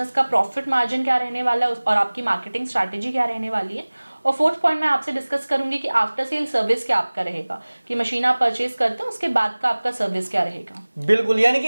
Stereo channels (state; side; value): inverted; both; correlation -1.00